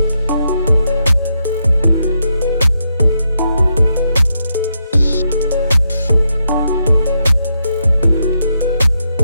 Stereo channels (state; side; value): inverted; both; correlation -0.81